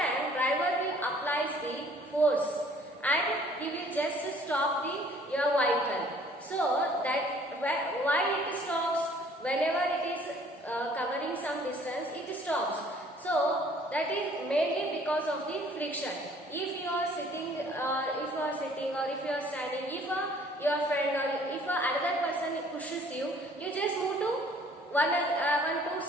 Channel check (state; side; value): normal; both; correlation 0.56